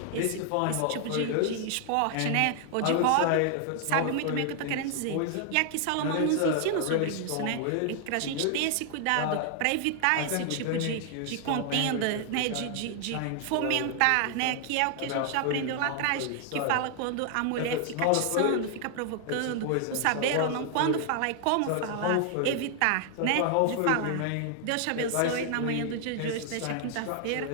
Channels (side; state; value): both; different; correlation 0.00